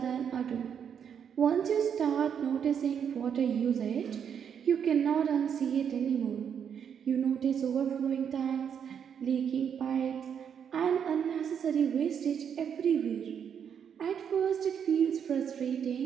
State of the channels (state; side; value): quieter; left; 7.9 dB